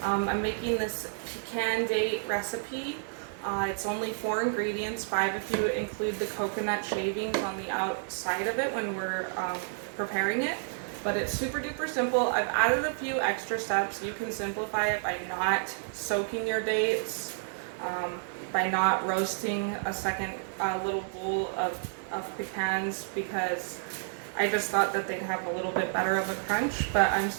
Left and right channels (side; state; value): left; silent; digital silence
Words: I'm making this pecan date recipe. It's only 4 ingredients, 5 if you include the coconut shavings on the outside of it when we're preparing it. But it's super duper simple. I've added a few extra steps. You can simplify it by not soaking your dates, by not roasting a second little bowl of pecans, because I just thought that they'd have a little bit better of a crunch, but I'm